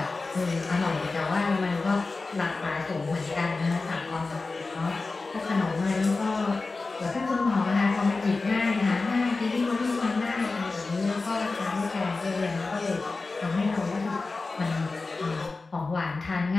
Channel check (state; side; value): quieter; right; 3.7 dB